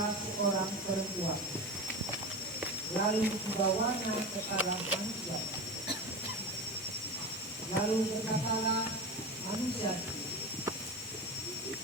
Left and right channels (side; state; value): both; normal; correlation 0.25